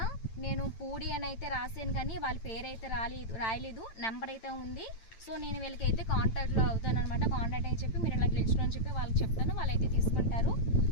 నేను పూడి అని అయితే రాసాను కానీ వాళ్ళ పేరు అయితే రాయలేదు, నెంబర్ అయితే ఉంది. సో నేను వీళ్ళకైతే కాంటాక్ట్లో అవుతాను అనమాట. కాంటాక్ట్ అని చెప్పి మీరు ఇలా గెలుచుకుని అని చెప్పి వాళ్ళకి చెప్తాను, వాళ్ళైతే తీసుకుంటారు.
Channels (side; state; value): right; late; 8.9 ms